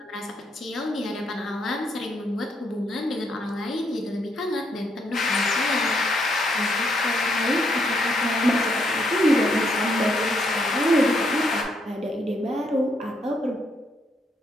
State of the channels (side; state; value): both; normal; correlation 0.74